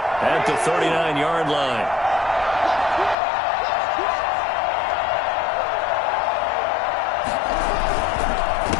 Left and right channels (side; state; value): right; drops out; at 3.2 s